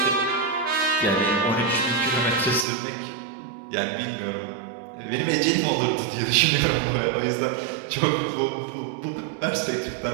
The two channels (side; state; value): left; drops out; at 2.7 s